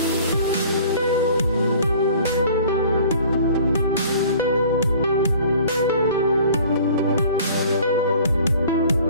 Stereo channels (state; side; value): inverted; both; correlation -0.49